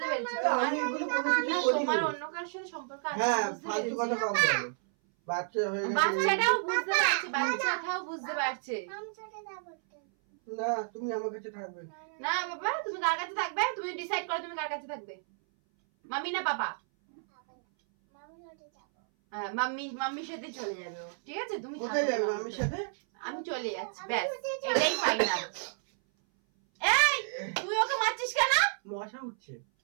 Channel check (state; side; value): silent; left; 57 dB below the other